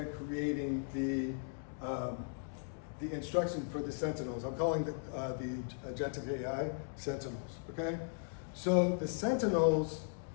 creating the instruction for the Sentinels. I'm calling the agentic AI Sentinels, okay? So the Sentinels,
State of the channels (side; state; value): right; silent; digital silence